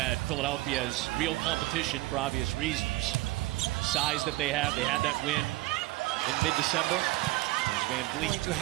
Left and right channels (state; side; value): quieter; left; 19.1 dB